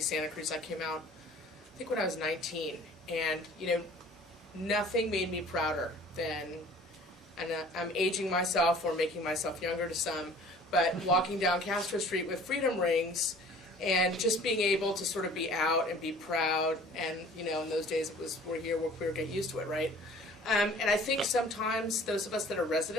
Santa Cruz. I came out, I think, when I was 19, and nothing made me prouder than, and I'm aging myself or making myself younger to some, but walking down Castro Street with freedom rings and just being able to sort of be out and be proud. And in those days it was, we're here, we're queer, get used to it, right? And I think sometimes those of us that are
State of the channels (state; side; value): normal; both; correlation 0.49